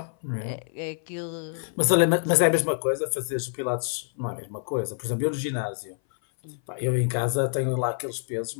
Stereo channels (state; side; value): silent; right; 58 dB below the other